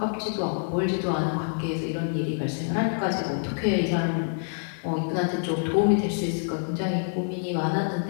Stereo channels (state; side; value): silent; right; 58 dB below the other